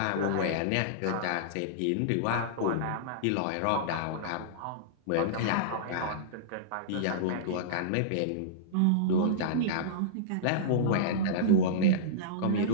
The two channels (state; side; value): different; both; correlation -0.03